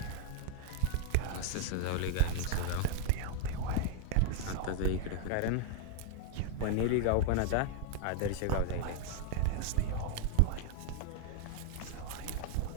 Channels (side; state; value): both; different; correlation 0.00